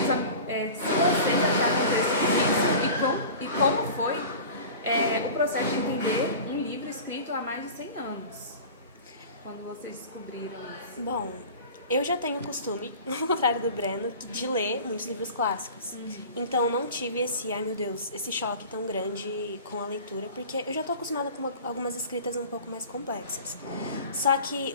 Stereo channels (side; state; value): both; inverted; correlation -0.38